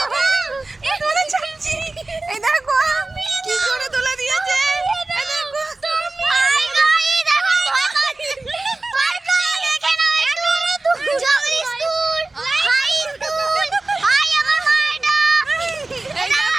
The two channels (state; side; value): quieter; left; 3.2 dB